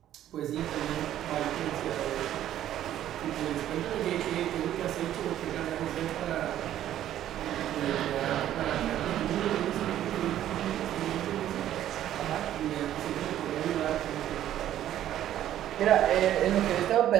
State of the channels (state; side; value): quieter; left; 12.0 dB